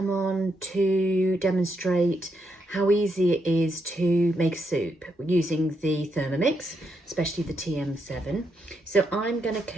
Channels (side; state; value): both; normal; correlation 0.80